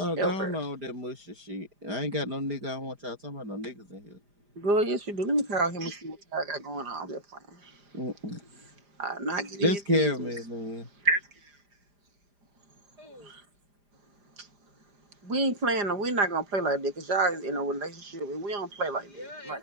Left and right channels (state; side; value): late; left; 5.0 ms